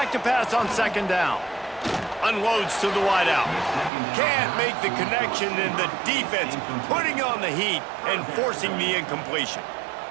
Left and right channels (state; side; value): drops out; left; at 3.9 s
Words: to pass on 2nd down. Unloads to the wideout. Can't make the connection, and the defense putting on the heat and forcing the incompletion.